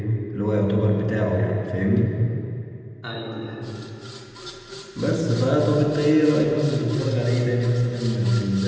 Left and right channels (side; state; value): both; identical; correlation 1.00